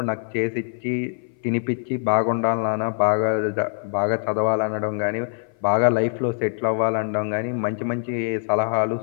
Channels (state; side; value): silent; right; 57 dB below the other